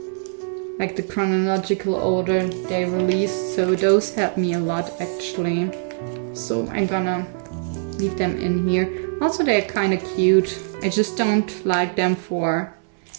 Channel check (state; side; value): silent; left; 64 dB below the other